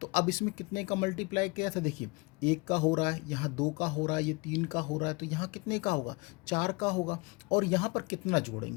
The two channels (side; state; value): right; quieter; 26.2 dB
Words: तो अब इसमें कितने का मल्टीप्लाई किया था, देखिए 1 का हो रहा है, यहाँ 2 का हो रहा है, ये 3 का हो रहा है, तो यहाँ कितने का होगा, 4 का होगा। और यहाँ पर कितना